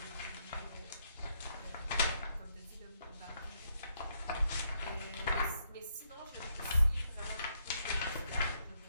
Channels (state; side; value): inverted; both; correlation -0.76